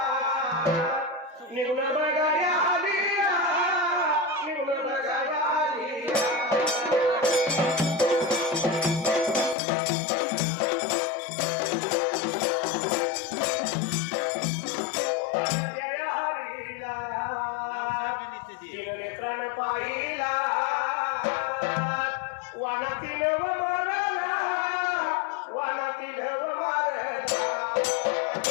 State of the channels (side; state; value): right; drops out; at 9.6 s